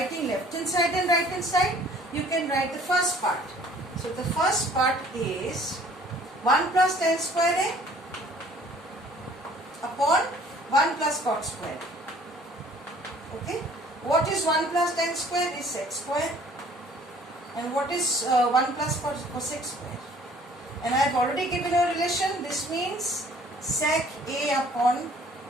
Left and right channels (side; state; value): both; normal; correlation 0.55